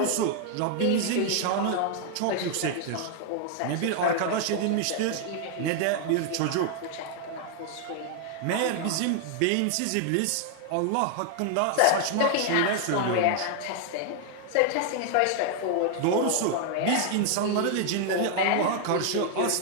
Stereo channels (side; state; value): both; different; correlation 0.00